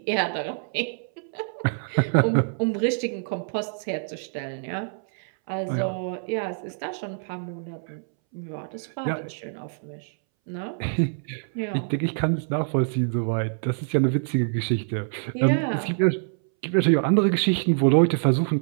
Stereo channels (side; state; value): left; silent; 61 dB below the other